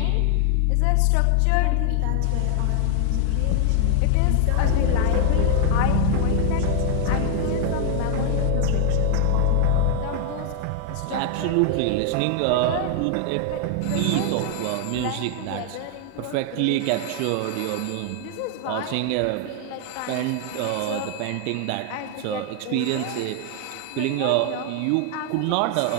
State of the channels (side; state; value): both; different; correlation 0.00